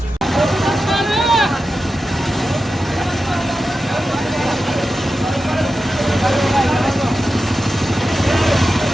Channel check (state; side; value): normal; both; correlation 0.92